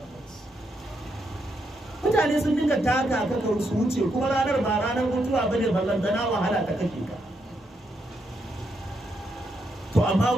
Mutane sun dinga taka kaka su wuce kuma ranar ba ranar mutuwa bane, ballantana wahala ta kake ka. To amma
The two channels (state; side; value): normal; both; correlation 0.80